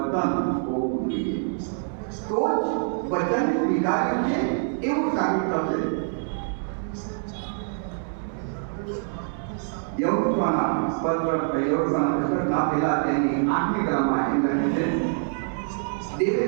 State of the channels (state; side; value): silent; left; 61 dB below the other